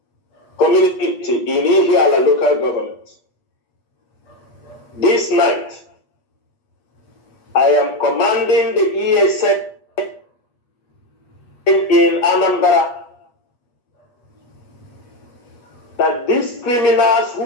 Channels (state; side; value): late; right; 8.4 ms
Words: community in Ihiala local government. This night, I am commanding the ESN in Anambra that these criminals